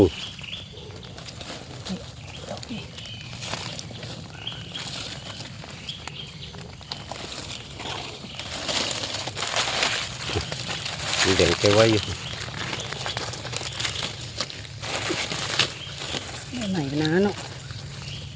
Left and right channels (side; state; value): both; identical; correlation 1.00